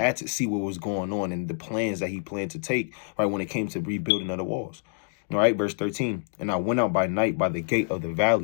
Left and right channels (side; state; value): right; silent; digital silence